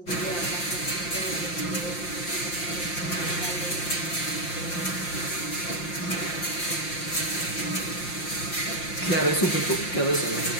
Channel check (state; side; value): late; right; 5.7 ms